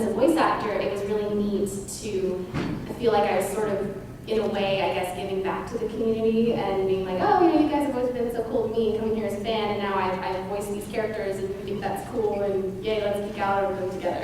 a voice actor, it was really neat to feel like I was sort of, in a way, I guess, giving back to the community and being like, oh, you guys have always been so cool to me, coming here as a fan, and now I've voiced these characters, and you think that's cool, and yay, let's geek out over them together.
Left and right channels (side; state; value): both; identical; correlation 1.00